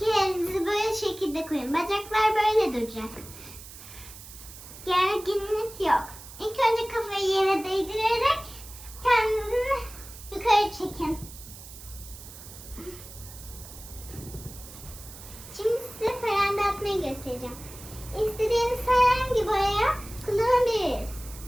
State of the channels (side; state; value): right; noise; hiss, 16 dB below the sound